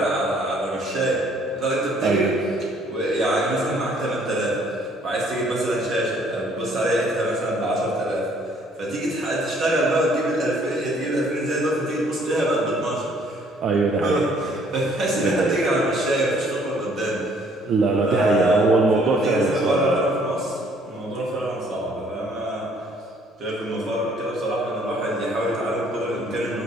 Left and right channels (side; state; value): both; normal; correlation 0.62